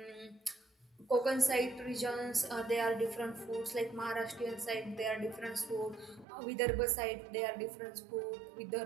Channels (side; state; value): left; drops out; at 6.2 s